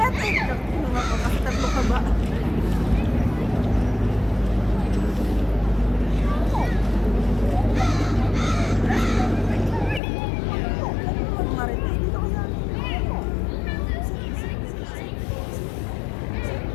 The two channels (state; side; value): drops out; right; at 10.0 s